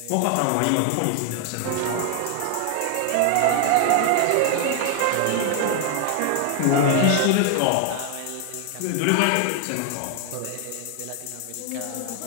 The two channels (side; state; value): both; different; correlation 0.00